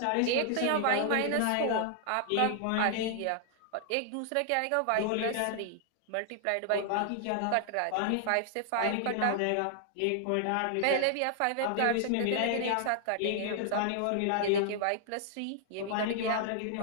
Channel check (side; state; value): both; different; correlation 0.00